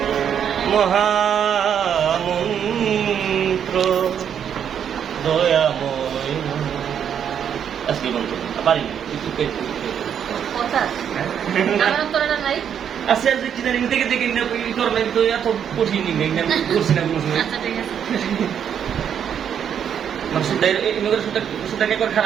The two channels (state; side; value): quieter; left; 8.5 dB